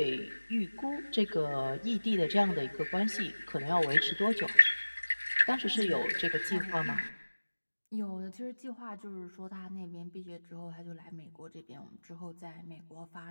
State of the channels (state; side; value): inverted; both; correlation -1.00